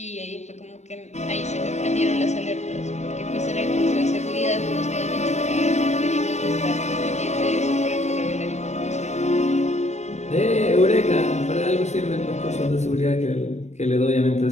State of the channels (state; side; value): late; right; 0.33 ms